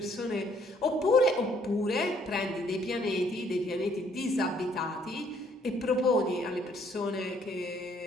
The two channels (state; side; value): normal; both; correlation 0.65